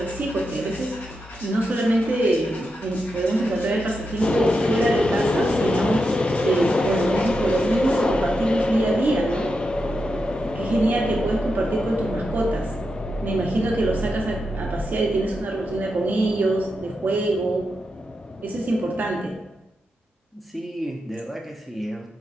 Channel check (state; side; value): normal; both; correlation 0.87